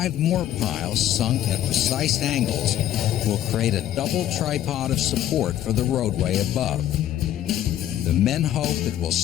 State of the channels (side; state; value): right; quieter; 11.9 dB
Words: more piles sunk at precise angles will create a double tripod of support for the roadway above. The men hope it will